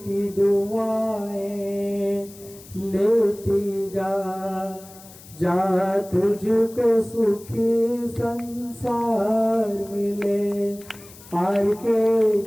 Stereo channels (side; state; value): left; noise; hiss, 20 dB below the sound